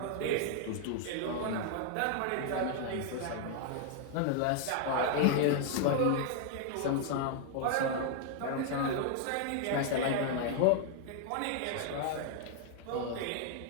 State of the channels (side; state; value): both; different; correlation 0.00